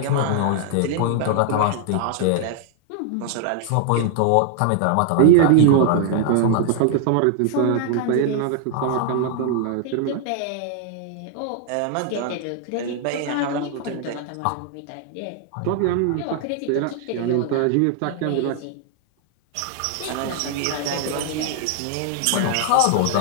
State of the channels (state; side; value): different; both; correlation 0.00